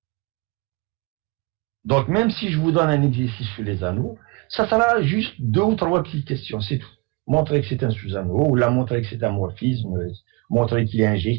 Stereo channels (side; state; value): left; quieter; 26.9 dB